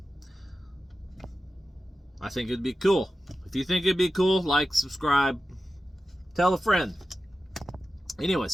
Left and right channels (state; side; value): normal; both; correlation 0.93